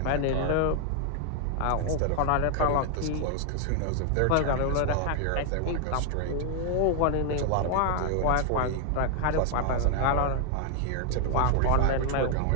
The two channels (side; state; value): both; different; correlation 0.00